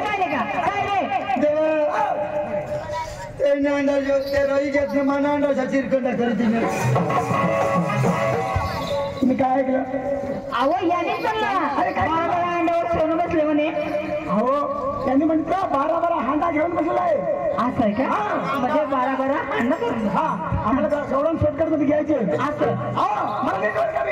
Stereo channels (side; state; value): both; identical; correlation 1.00